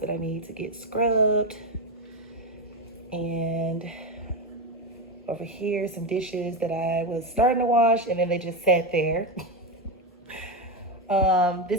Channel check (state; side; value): normal; both; correlation 0.12